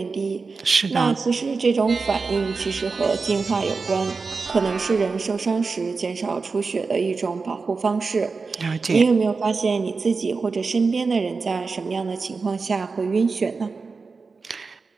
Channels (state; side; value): quieter; left; 4.4 dB